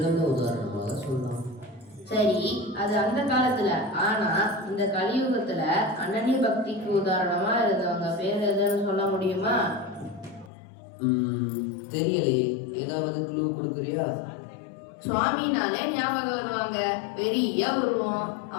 உதாரணமாக சொல்லலாம். சரி, அது அந்த காலத்துல. ஆனா இந்த கலியுகத்துல அனன்ய பக்திக்கு உதாரணமா இருந்தவங்க பேர் எதுன்னு சொல்ல முடியுமா? தெரியலையே, ஏதாவது க்ளூ கொடுக்குறியா? சுவாமினாலே ஞாபகம் வருவாங்க. பெரிய உருவம்.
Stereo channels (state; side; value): drops out; right; at 10.5 s